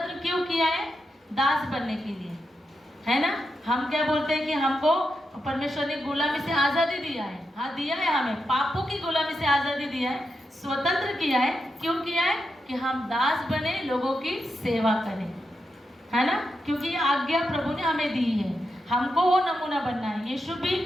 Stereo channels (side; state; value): both; normal; correlation 0.86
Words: क्यों किया है, दास बनने के लिए, है ना। हम क्या बोलते हैं कि हमको परमेश्वर ने गुलामी से आज़ादी दिया है। हाँ, दिया है, हमें पापों की गुलामी से आज़ादी दिया है, स्वतंत्र किया है। क्यों किया है, कि हम दास बने, लोगों की सेवा करें, है ना। क्योंकि ये आज्ञा प्रभु ने हमें दी है, हमको वो नमूना बनना है। यीशु भी